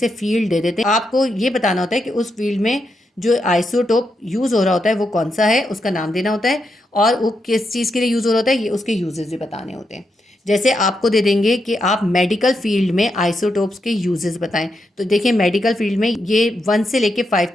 फील्ड दे देते हैं। आपको ये बताना होता है कि उस फील्ड में जो आइसोटोप यूज़ हो रहा होता है वो कौन सा है, उसका नाम देना होता है और वो किस चीज़ के लिए यूज़ हो रहा होता है, ये उसके यूजेस भी बताने होते हैं। जैसे आपको दे देंगे कि आप मेडिकल फील्ड में आइसोटोप्स के यूजेस बताएं, तो देखिए मेडिकल फील्ड में ये 1 से लेके 5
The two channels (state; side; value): normal; both; correlation 0.83